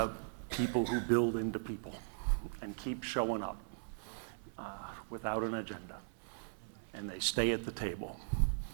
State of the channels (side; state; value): left; silent; 52 dB below the other